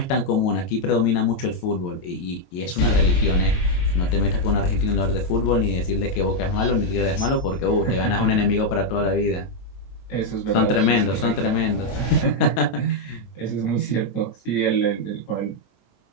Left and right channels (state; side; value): late; right; 22 ms